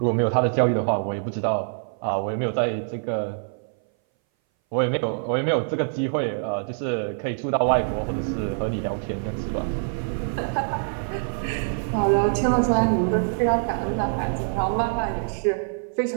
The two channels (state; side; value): silent; left; 59 dB below the other